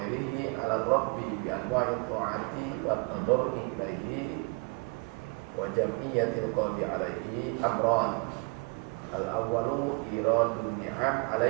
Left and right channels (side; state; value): left; quieter; 32.4 dB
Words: ala rabbi bi anwa'il ta'ati wa tadarru'i ilaihi wa jam'iyyatil qalbi alaihi amran. Al-awwalu iradun ni'am